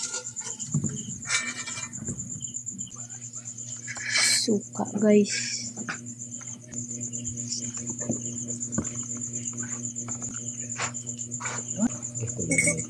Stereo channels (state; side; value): identical; both; correlation 1.00